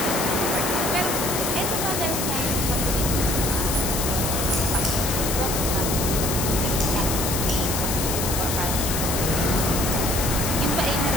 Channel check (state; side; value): noise; left; hiss, 2 dB below the sound